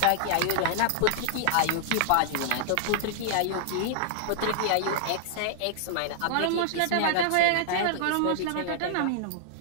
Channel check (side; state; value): both; different; correlation -0.01